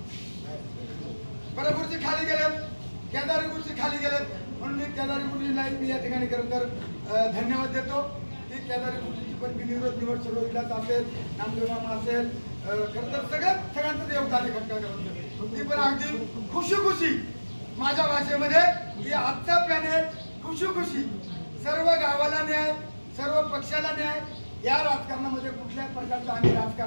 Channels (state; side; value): inverted; both; correlation -1.00